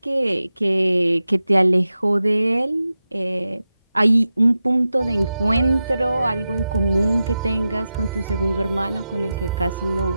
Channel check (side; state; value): both; inverted; correlation -0.92